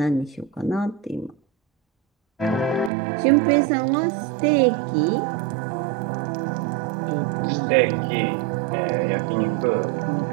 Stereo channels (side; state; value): left; drops out; at 2.9 s